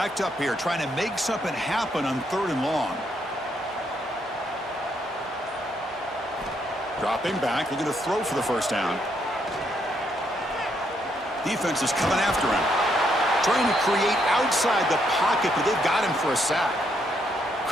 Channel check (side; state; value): both; normal; correlation 0.75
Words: up here trying to make something happen on 3rd and long. Dropping back, looking to throw for the first down. Defense is coming after him. Trying to create outside the pocket, but they've got him for a sack.